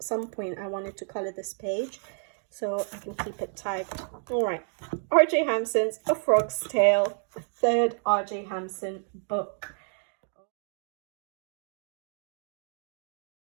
some point I wanted to color this page, so I can keep it tagged. All right, R.J. Hampson's A Frog's Tale, a third R.J. Hampson book.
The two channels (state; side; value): silent; left; 58 dB below the other